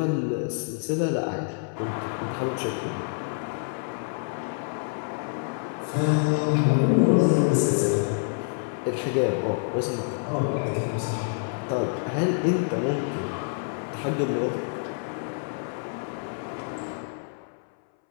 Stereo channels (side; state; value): right; silent; 60 dB below the other